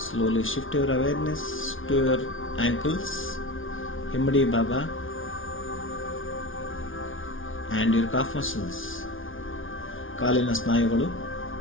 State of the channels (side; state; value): right; late; 0.57 ms